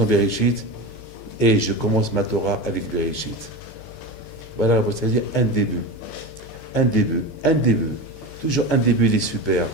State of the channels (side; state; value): right; late; 15 ms